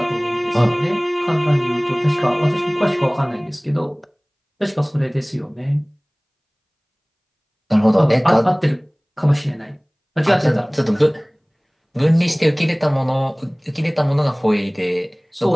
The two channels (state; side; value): identical; both; correlation 1.00